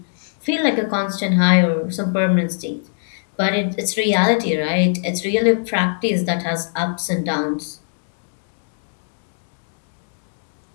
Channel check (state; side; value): silent; right; digital silence